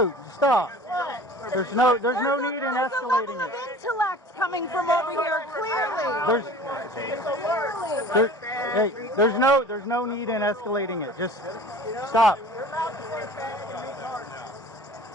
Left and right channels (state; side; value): normal; both; correlation 0.43